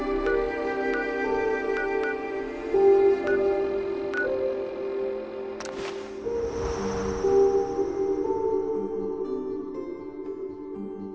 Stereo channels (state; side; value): identical; both; correlation 1.00